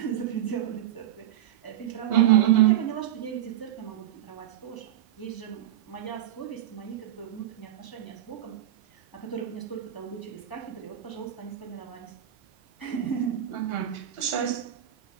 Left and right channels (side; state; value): left; quieter; 12.0 dB